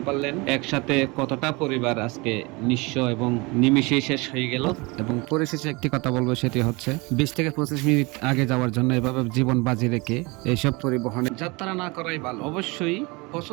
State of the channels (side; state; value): left; quieter; 26.2 dB